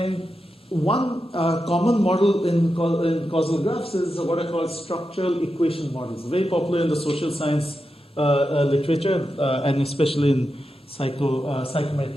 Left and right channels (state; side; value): normal; both; correlation 0.89